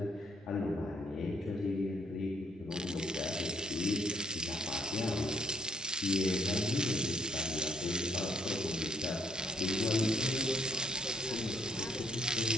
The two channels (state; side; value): normal; both; correlation 0.66